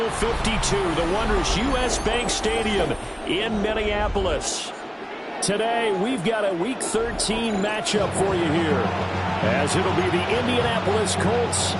52, the wondrous U.S. Bank Stadium in Minneapolis. Today, we've got a Week 13 matchup for you here, as it'll be the Indianapolis Colts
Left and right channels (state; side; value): identical; both; correlation 1.00